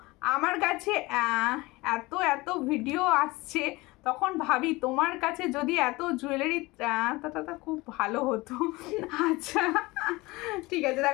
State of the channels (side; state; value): right; quieter; 21.9 dB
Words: আমার কাছে এত এত ভিডিও আসছে, তখন ভাবি তোমার কাছে যদি এত জুয়েলারি তা খুব ভালো হতো। আচ্ছা ঠিক আছে,